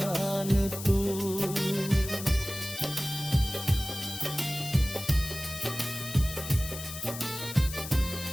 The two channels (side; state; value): left; noise; hiss, 10 dB below the sound